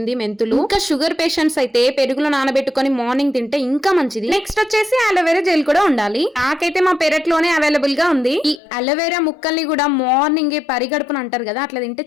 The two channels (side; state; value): right; drops out; at 8.6 s